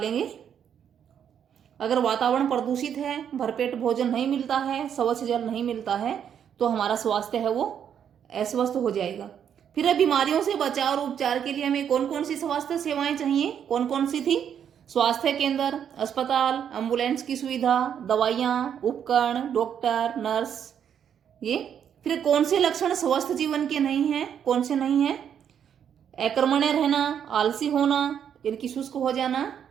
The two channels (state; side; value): quieter; left; 8.6 dB